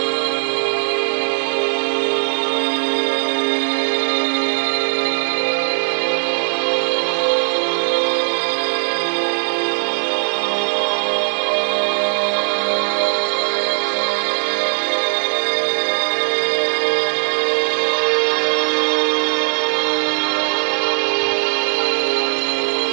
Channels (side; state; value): left; silent; digital silence